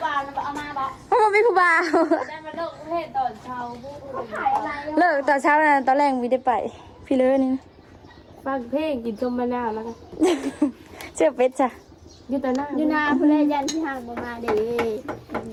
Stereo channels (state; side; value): identical; both; correlation 1.00